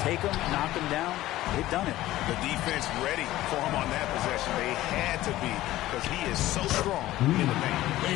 take them, knock them down. They've done it. The defense ready for him on that possession. They had to be, because he is so strong in the paint.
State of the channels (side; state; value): right; quieter; 15.6 dB